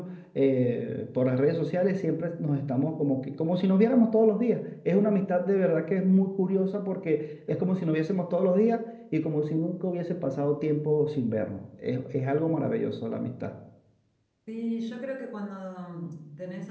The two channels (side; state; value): both; identical; correlation 1.00